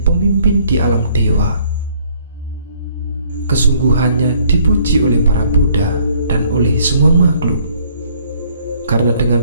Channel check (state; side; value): inverted; both; correlation -0.63